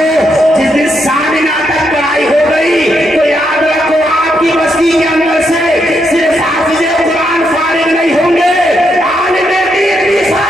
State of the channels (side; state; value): both; normal; correlation 0.79